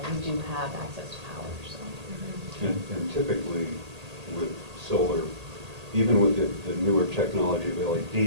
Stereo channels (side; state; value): left; late; 1.8 ms